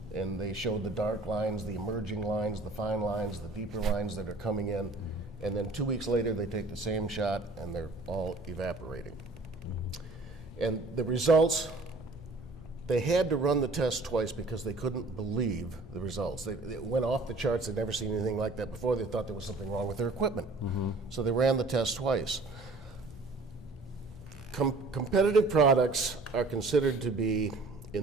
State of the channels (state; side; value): quieter; left; 3.2 dB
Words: and they showed the dark lines, the emerging lines, the fine lines, the deeper lines that are coming in. And then 2 weeks later, they take the same shot, and they're all evaporating. And the results, they had to run the test twice because they couldn't believe the results. It went off the charts. They'd never seen anything like that before. They thought there was something wrong with their equipment. So they ran the test twice. Competitive products are considered to be